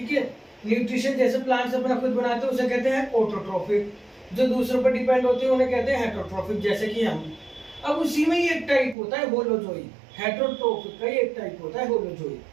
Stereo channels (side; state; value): left; drops out; at 9.0 s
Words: है, न्यूट्रिशन जैसे प्लांट्स अपना खुद बनाते हैं उसे कहते हैं ऑटोट्रोफिक, जो दूसरों पर डिपेंड होते हैं उन्हें कहते हैं हेटरोट्रोफिक, जैसे कि हम। अब उसी में ही एक टाइप होता है होलोजोइक। हेटरोट्रोफिक का ही एक टाइप होता है होलोजोइक।